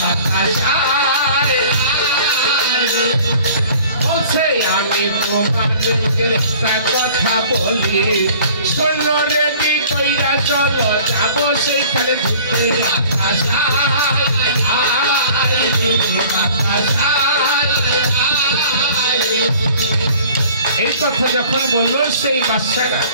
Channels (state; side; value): inverted; both; correlation -0.48